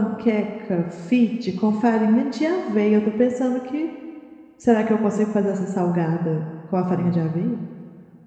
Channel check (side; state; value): both; identical; correlation 1.00